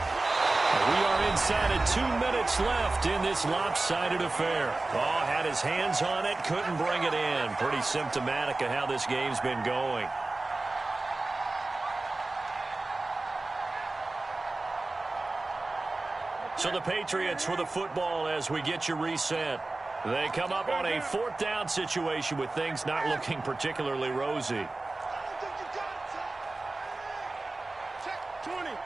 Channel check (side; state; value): left; quieter; 3.2 dB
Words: We are inside of 2 minutes left in this lopsided affair. Oh, had his hands on it, couldn't bring it in. Pretty symptomatic of how this game's been going. So the Patriots with the football as we get you reset. They come up on a 4th down situation with things not looking particularly rosy.